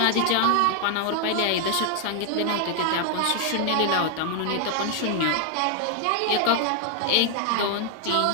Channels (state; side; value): different; both; correlation 0.00